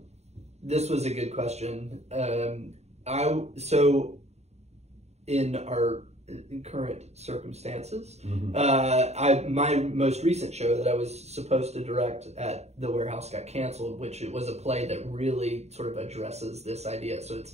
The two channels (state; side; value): late; left; 0.32 ms